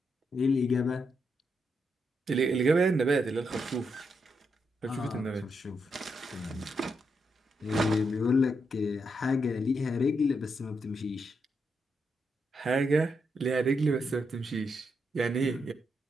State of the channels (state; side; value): normal; both; correlation 0.81